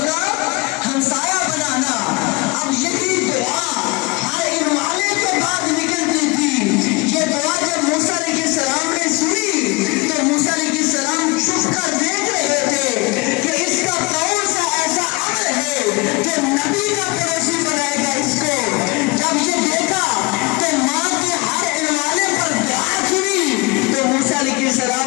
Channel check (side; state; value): right; quieter; 24.9 dB